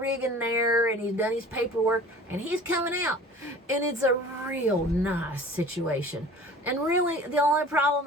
there, and he's done his paperwork, and he's coming out. And it's a real nice situation. And really, the only problem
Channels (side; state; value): both; normal; correlation 0.44